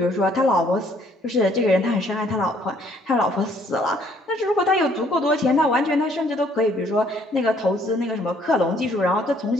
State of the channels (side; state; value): both; normal; correlation 0.63